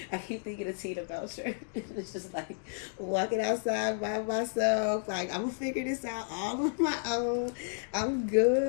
I keep thinking of Tina Belcher. It's just like walking outside by myself. Like, I'm going to figure this out all on my own. I'm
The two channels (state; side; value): silent; right; digital silence